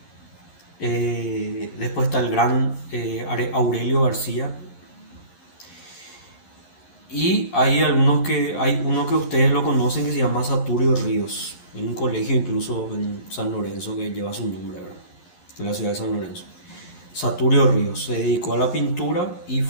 Después está el gran Aurelio García. Y hay uno que ustedes lo conocen que se llama Saturio Ríos. Hay un colegio incluso en San Lorenzo que lleva su nombre, ¿verdad? En la ciudad de San Lorenzo. Saturio Ríos se dedicó a la pintura y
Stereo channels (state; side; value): late; right; 11 ms